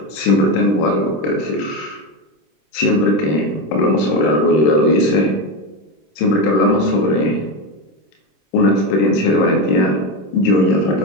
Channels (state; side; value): late; right; 26 ms